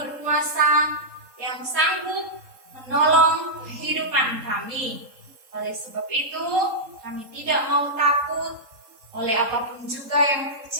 yang sanggup menolong kehidupan kami. Oleh sebab itu, kami tidak mau takut oleh apapun juga yang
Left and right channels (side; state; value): left; late; 3.7 ms